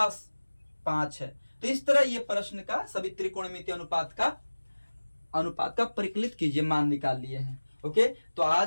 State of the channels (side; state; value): both; inverted; correlation -1.00